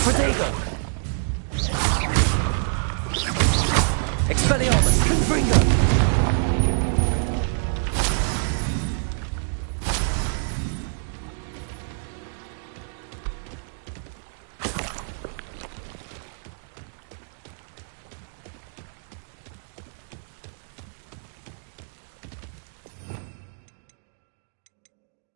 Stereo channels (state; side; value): silent; left; digital silence